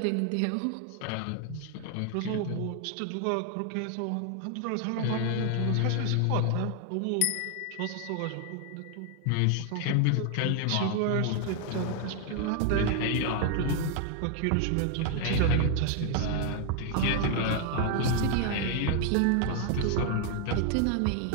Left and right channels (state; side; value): different; both; correlation 0.00